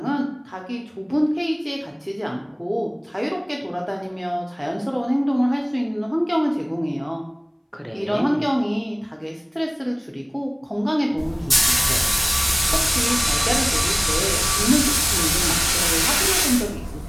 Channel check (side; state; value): both; identical; correlation 1.00